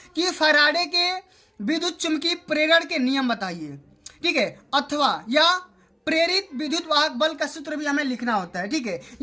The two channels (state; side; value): identical; both; correlation 1.00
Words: कि फैराडे के विद्युत चुंबकीय प्रेरण के नियम बताइए। ठीक है, अथवा या प्रेरित विद्युत वाहक बल का सूत्र भी हमें लिखना होता है। ठीक है,